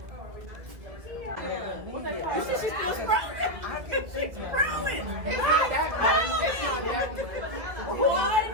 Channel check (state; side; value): late; left; 1.7 ms